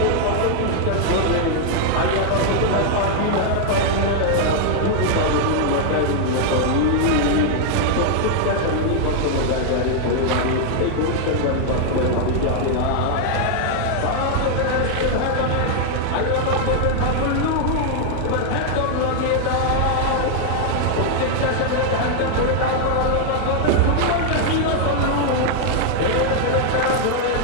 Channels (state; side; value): different; both; correlation 0.00